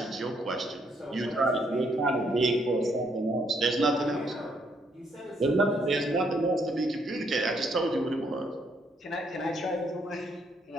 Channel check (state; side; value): normal; both; correlation 0.72